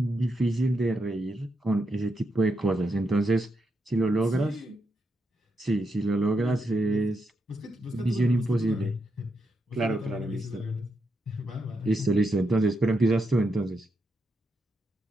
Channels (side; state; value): both; normal; correlation 0.83